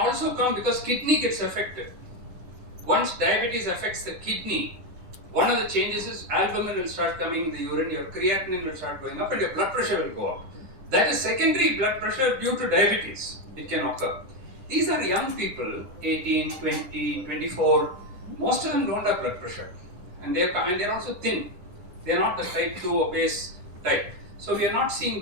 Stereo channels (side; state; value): left; late; 9.8 ms